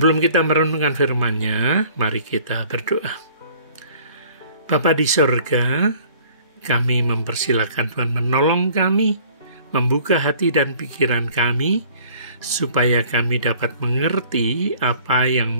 kita merenungkan firman-Nya, mari kita berdoa. Bapa di sorga, kami mempersilakan Tuhan menolong kami, membuka hati dan pikiran kami, supaya kami dapat mengerti apa yang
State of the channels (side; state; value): both; inverted; correlation -0.53